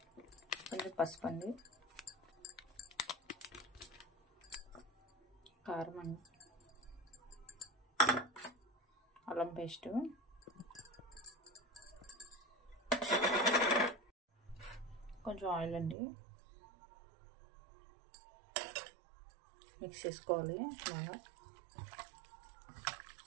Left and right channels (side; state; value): left; drops out; at 16.0 s